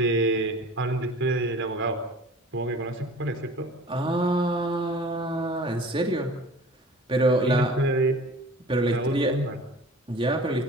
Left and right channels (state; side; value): normal; both; correlation 0.43